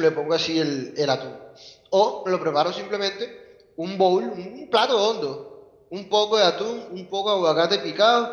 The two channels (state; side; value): identical; both; correlation 1.00